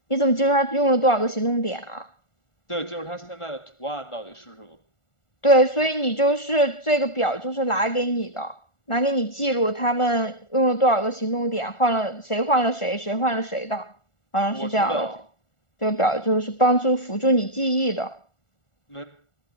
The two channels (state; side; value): late; right; 1.4 ms